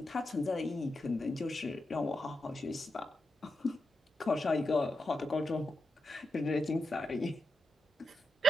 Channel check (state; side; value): normal; both; correlation 0.87